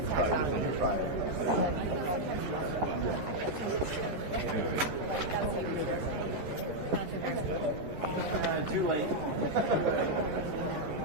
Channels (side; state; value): left; late; 13 ms